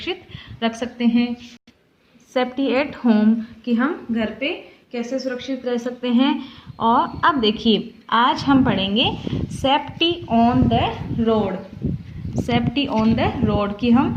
रख सकते हैं। सेफ्टी एट होम कि हम घर पे कैसे सुरक्षित रह सकते हैं। और अब देखिए आज हम पढ़ेंगे safety on the road. Safety on the road कि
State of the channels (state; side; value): identical; both; correlation 1.00